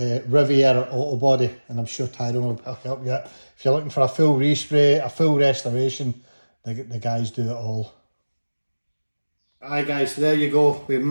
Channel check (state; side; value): inverted; both; correlation -1.00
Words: Riviera Auto Body and I'm sure Tyrone will help you out. If you're looking for a full respray, a full restoration, the guys do it all. Aye guys, so there you go. We